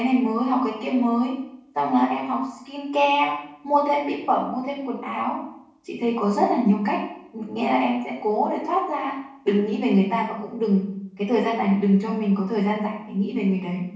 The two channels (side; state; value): both; identical; correlation 1.00